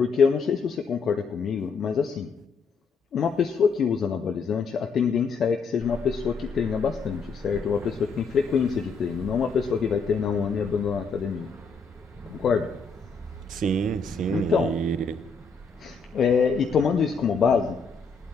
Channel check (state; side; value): quieter; right; 4.8 dB